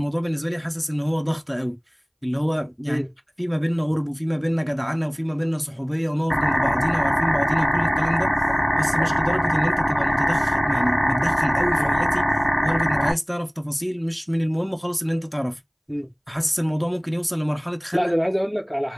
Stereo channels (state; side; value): identical; both; correlation 1.00